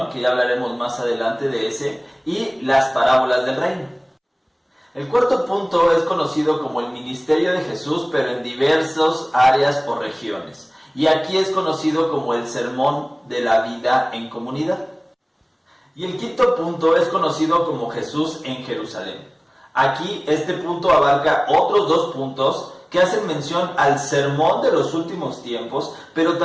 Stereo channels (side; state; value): both; identical; correlation 1.00